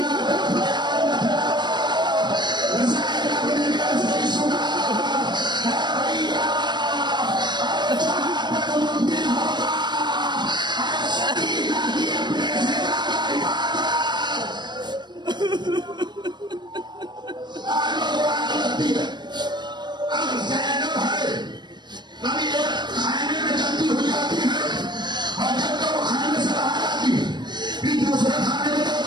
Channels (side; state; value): left; late; 0.21 ms